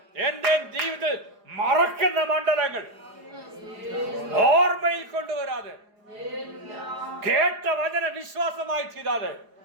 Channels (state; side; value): late; left; 4.9 ms